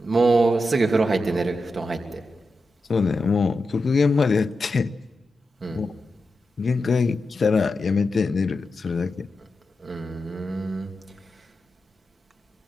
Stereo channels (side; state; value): both; normal; correlation 0.89